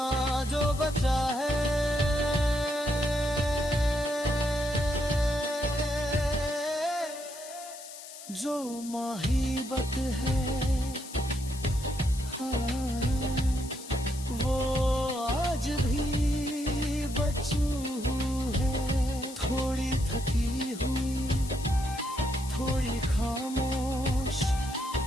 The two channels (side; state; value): left; noise; hiss, 14 dB below the sound